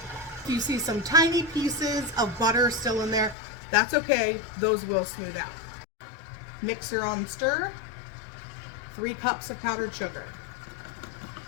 If you see some tiny pieces of butter still in there, that's okay. Those will smooth out. Mixer on stir. 3 cups of powdered sugar.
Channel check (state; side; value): drops out; right; at 3.4 s